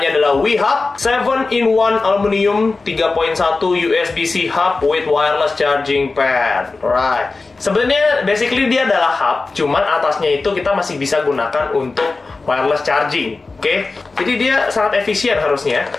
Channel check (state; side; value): quieter; right; 3.8 dB